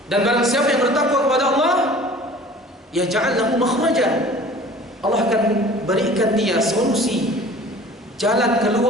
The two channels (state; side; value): normal; both; correlation 0.46